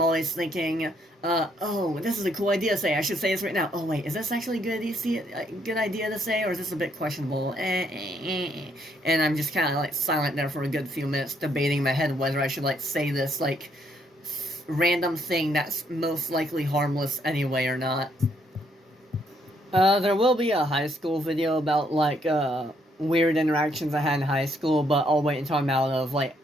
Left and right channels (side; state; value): both; normal; correlation 0.71